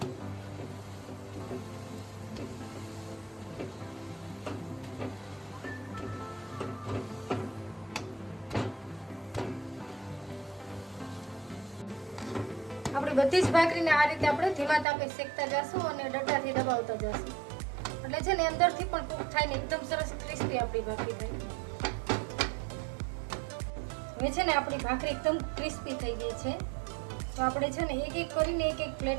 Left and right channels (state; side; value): drops out; left; at 14.9 s